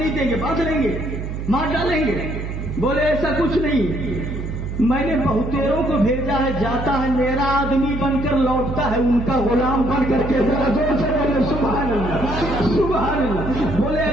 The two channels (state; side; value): noise; right; hum, 5 dB below the sound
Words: देंगे, बांध लेंगे, मार डालेंगे? बोले ऐसा कुछ नहीं, मैंने बहुतेरों को भेजा है, जाता है मेरा आदमी बनकर लौटता है उनका गुलाम बन करके। जरा जोर से बोले सुभान अल्लाह, सुभान अल्लाह। बोले